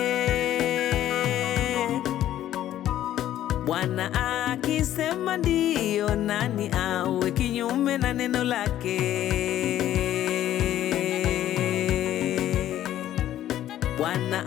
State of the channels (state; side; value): quieter; right; 12.4 dB